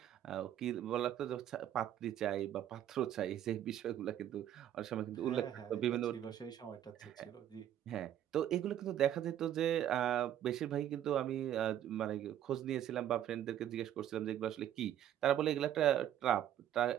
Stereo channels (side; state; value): left; quieter; 11.1 dB